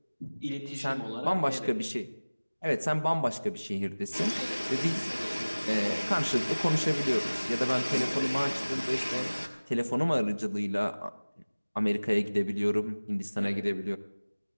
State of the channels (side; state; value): both; inverted; correlation -1.00